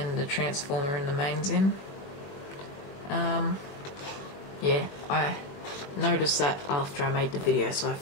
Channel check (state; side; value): late; right; 21 ms